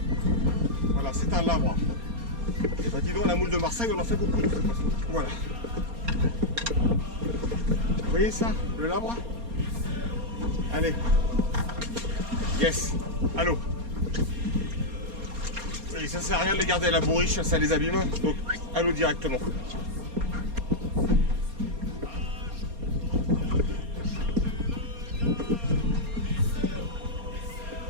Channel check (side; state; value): left; late; 4.3 ms